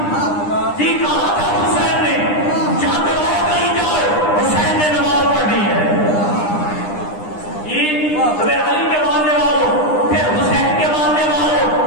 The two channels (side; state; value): right; late; 9.8 ms